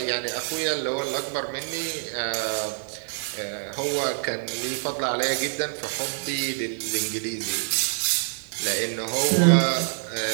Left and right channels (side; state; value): left; silent; digital silence